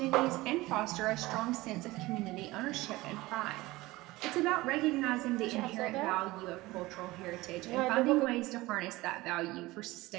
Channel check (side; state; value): left; quieter; 19.7 dB